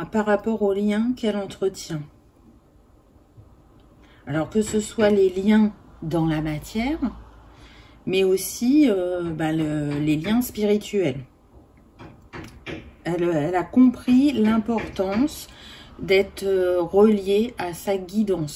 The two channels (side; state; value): both; identical; correlation 1.00